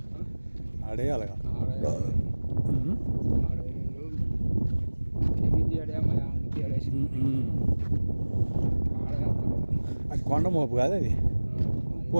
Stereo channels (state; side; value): inverted; both; correlation -1.00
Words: ఆడేయాలిగా అది కొండ మోపు కాదు అది